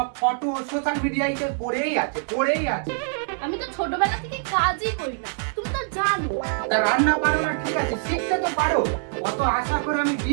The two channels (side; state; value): left; silent; digital silence